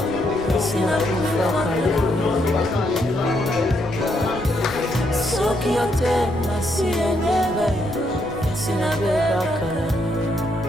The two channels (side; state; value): left; noise; rumble, 17 dB below the sound